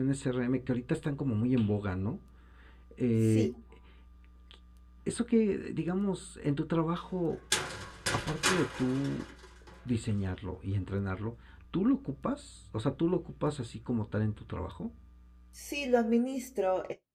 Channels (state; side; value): identical; both; correlation 1.00